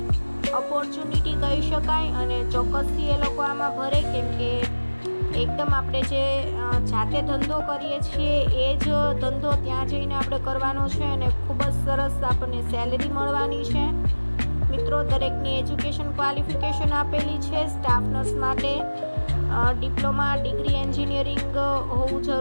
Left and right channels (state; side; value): inverted; both; correlation -1.00